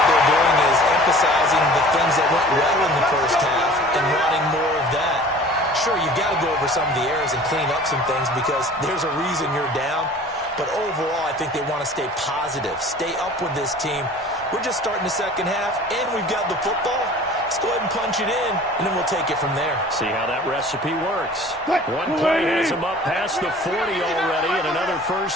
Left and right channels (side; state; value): both; normal; correlation 0.45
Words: they're doing is emphasizing the things that went well in the first half and wanting more of that. Sure, you've got to go over some of the errors and clean up some things because there's a reason you're down. But overall, I think they want to stay positive, stay up with this team. We're just starting the second half, and we've got the football. Let's go ahead and punch it in, and then we'll take it from there. See how that recipe works. One play has him up past the 40 already, and another